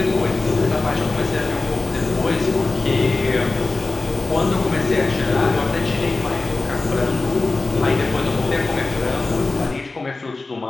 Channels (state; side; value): quieter; right; 3.4 dB